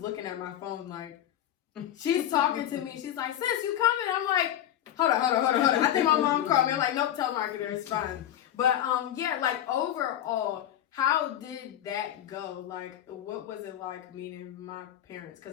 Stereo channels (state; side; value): quieter; right; 11.5 dB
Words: looking at my phone like, she's talking to me. She's like, "Sis, you coming?" I'm like, hold on. I think my mom called me. I'm like, nope, telemarketer, it's fine. But yeah, like overall, how did that go? Like, what was it like meeting my parents?